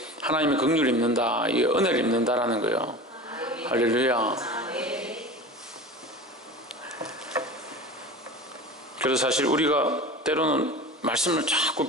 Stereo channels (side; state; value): both; normal; correlation 0.34